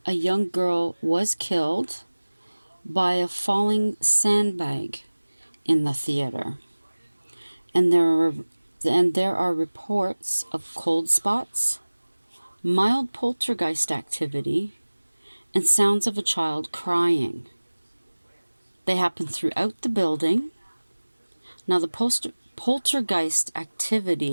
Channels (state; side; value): inverted; both; correlation -1.00